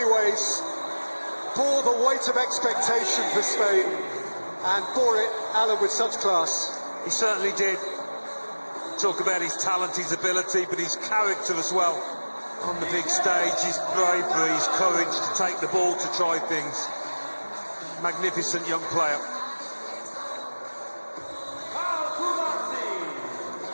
ways, bore the weight of expectation for Spain, and bore it, Alan, with such class. He certainly did. Talk about his talent, his ability, but his character as well. On the big stage, his bravery, his courage to take the ball, to try things. Magnificent young player.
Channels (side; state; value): both; inverted; correlation -1.00